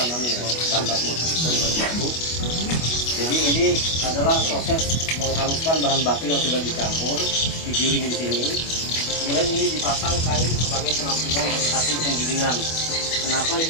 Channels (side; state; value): right; late; 25 ms